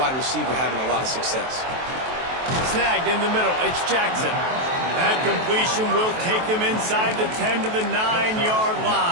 receiver having a lot of success. Snagged in the middle, it's Jackson. That completion will take them inside the 10 to the 9-yard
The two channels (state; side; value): late; left; 23 ms